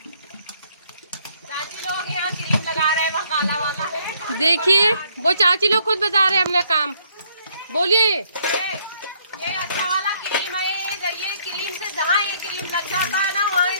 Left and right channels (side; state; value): both; inverted; correlation -0.67